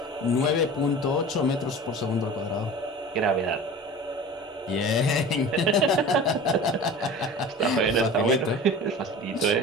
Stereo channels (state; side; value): normal; both; correlation 0.37